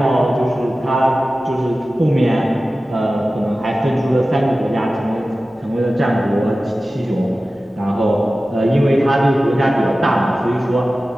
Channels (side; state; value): both; normal; correlation 0.95